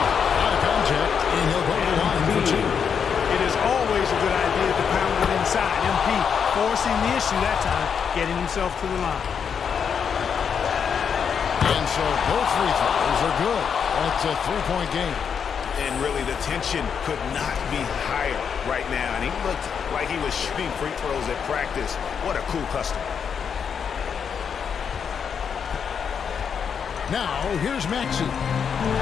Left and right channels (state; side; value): quieter; right; 7.0 dB